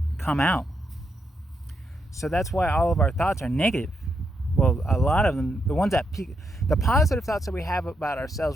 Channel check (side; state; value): both; normal; correlation 0.81